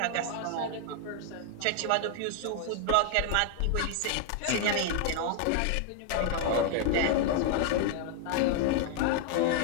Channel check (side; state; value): both; different; correlation 0.00